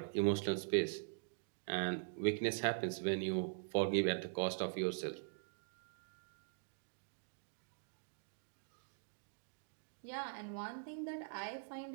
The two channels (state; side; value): silent; left; digital silence